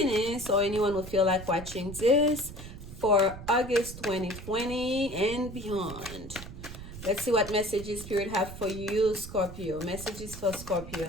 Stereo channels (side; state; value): right; noise; rumble, 12 dB below the sound